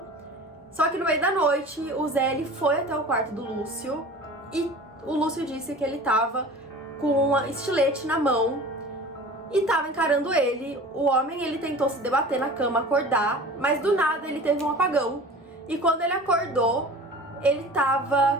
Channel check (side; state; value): both; normal; correlation 0.39